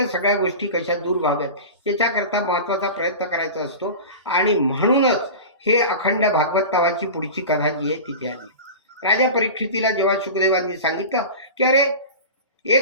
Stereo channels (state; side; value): inverted; both; correlation -0.31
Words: सगळ्या गोष्टी कशा दूर व्हाव्यात याच्याकरता महत्त्वाचा प्रयत्न करायचा असतो. आणि म्हणूनच हे अखंड भागवत नावाची पुढची कथा जी आहे तिथे आली. राजा परीक्षितीला जेव्हा शुकदेवांनी सांगितलं की अरे